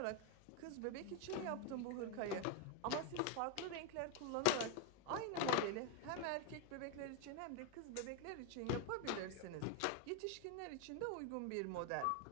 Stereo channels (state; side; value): different; both; correlation 0.01